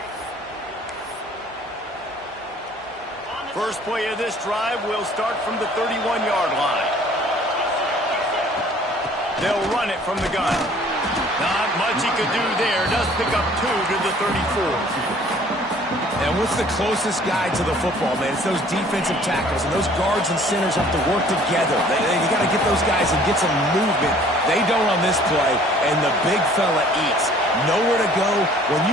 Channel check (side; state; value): both; normal; correlation 0.54